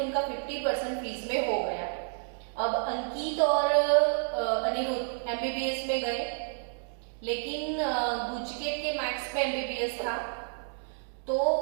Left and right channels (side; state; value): left; silent; digital silence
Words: 50% फीस में हो गया। अब अंकित और अनिरुद्ध एमबीबीएस में गए, लेकिन गुजकेट के मैथ्स पे एमबीबीएस था तो